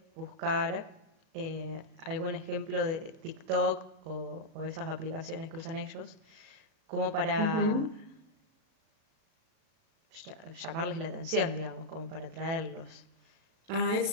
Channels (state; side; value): late; left; 37 ms